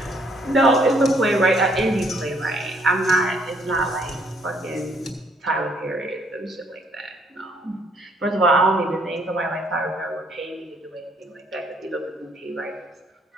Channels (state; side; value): normal; both; correlation 0.67